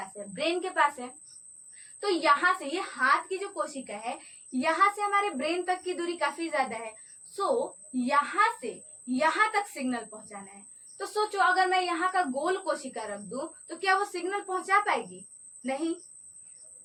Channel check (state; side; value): identical; both; correlation 1.00